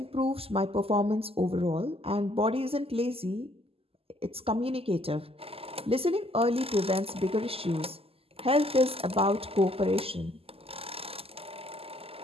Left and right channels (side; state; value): left; late; 0.28 ms